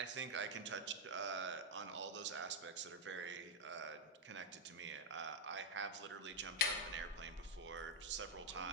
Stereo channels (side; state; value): both; normal; correlation 0.01